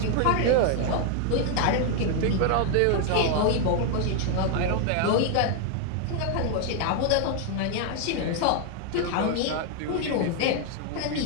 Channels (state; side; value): different; both; correlation 0.00